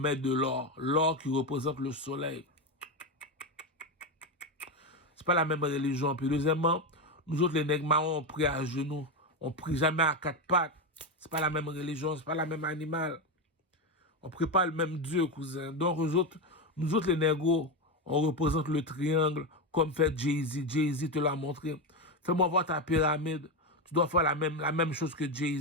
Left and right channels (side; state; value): both; normal; correlation 0.12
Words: de l'or. L'or qui représente le soleil. C'est pas la même religion. Puis deuxièmement, nous autres, les nègres marrons, on prie à genoux. On prie jamais à quatre pattes. C'est pas la même religion, c'est pas la même animal. On prie pas le même Dieu, cousin. Donc, nous autres, les négros, on représente le triangle comme fait Jay-Z. Jay-Z te l'a montré. Fais-moi voir ta pyramide. Tu dois faire la même chose que